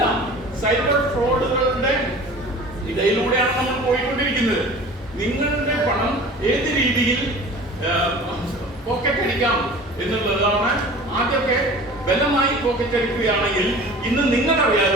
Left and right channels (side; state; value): both; normal; correlation 0.41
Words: സൈബർ ഫ്രോഡുകളുടെ ഇടയിലൂടെയാണ് നമ്മൾ പോയിക്കൊണ്ടിരിക്കുന്നത്. നിങ്ങളുടെ പണം ഏത് രീതിയിൽ പോക്കറ്റ് അടിക്കാം എന്നുള്ളതാണ്. ആദ്യമൊക്കെ ബലമായി പോക്കറ്റ് അടിക്കുകയാണെങ്കിൽ ഇന്ന്